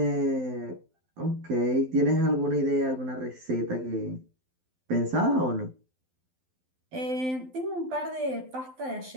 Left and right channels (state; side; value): late; left; 12 ms